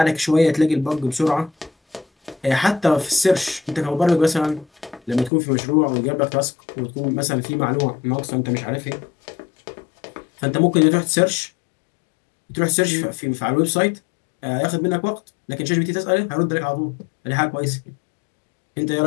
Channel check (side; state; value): right; drops out; at 5.3 s